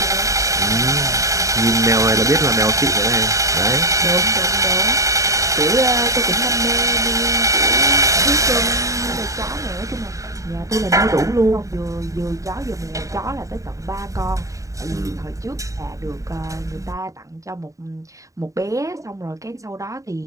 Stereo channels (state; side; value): late; left; 0.16 ms